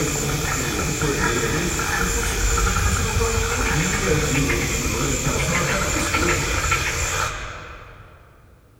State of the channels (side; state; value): both; identical; correlation 1.00